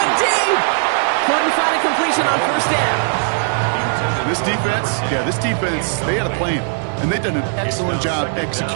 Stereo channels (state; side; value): silent; left; 67 dB below the other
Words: deep. Couldn't find a completion on first down. This defense, they had a plan. And they've done an excellent job